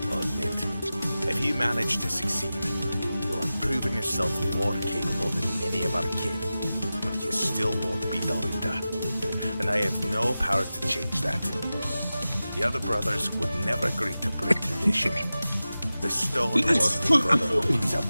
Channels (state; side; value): inverted; both; correlation -0.95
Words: I'll admit. If you manage to succeed, you'll have proven yourself more capable than many of our kin. But you still won't be Dalrita. And I have no power to change that. The other brothers would never agree to break tradition. The StoneWarden Brotherhood is a